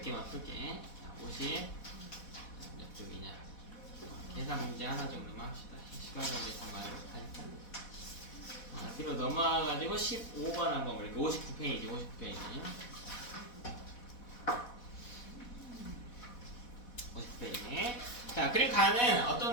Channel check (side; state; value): right; late; 4.1 ms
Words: 개만 풀게. 자, 50 몇 쪽이냐. 계산 문제 하나 정도만 합시다. 시간 관계상 말을 못하니까. 뒤로 넘어가가지고 15번 한번 볼게요. 59페이지, 59페이지. 50페이지. 자, 그리고 가는